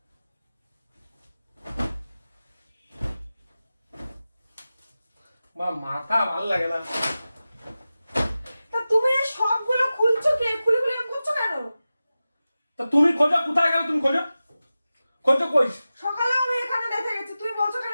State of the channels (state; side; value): inverted; both; correlation -0.95